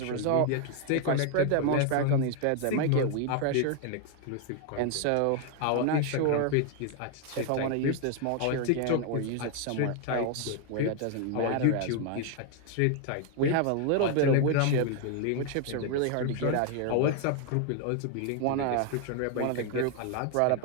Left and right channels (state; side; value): different; both; correlation 0.00